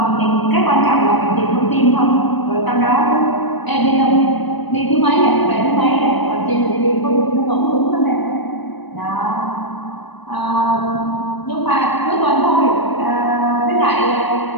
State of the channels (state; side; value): late; right; 1.0 ms